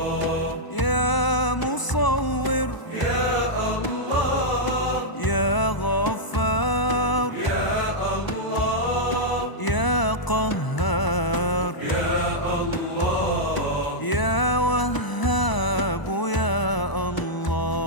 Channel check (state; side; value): late; right; 1.0 ms